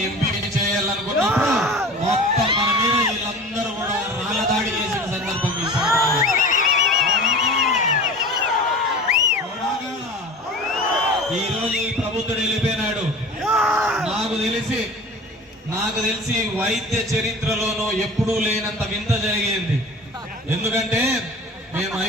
ఎంపీ చేయాలనుకున్నప్పుడు మొత్తం మన మీద వీళ్ళందరూ కూడా రాళ్ళ దాడి చేసిన సందర్భం ఈ రోజు ఈ ప్రభుత్వం వెళ్ళిపోయినాడు. నాకు తెలిసి వైద్య చరిత్రలోనూ ఎప్పుడూ లేనంత వింత జరిగింది. ఎందుకంటే మేము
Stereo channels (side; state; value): both; normal; correlation 0.38